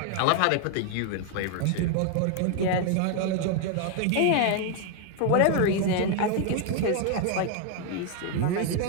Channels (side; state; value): both; different; correlation 0.00